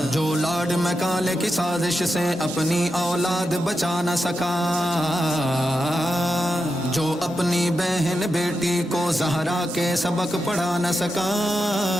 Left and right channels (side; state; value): both; normal; correlation 0.88